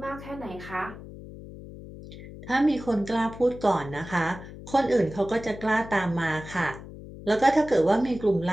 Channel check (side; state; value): left; noise; hum, 14 dB below the sound